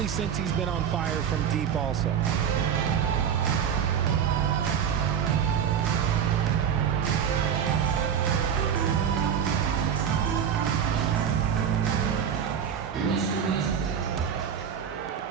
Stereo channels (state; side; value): quieter; left; 8.1 dB